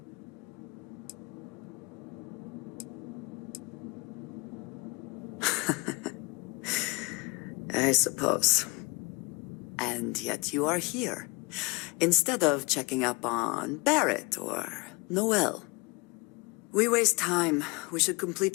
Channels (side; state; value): right; quieter; 27.9 dB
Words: I suppose. And yet you are here, instead of checking up on Barrett or Noel. We waste time. We should